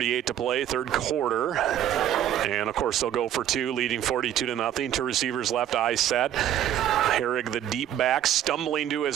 to play, third quarter. And, of course, they'll go for 2, leading 42-0. 2 receivers left, I set. Herrig, the deep back, stumbling to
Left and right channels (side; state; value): left; quieter; 11.0 dB